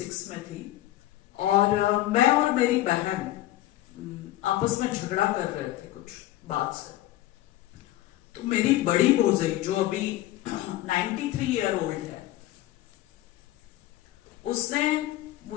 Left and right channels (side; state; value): right; quieter; 15.2 dB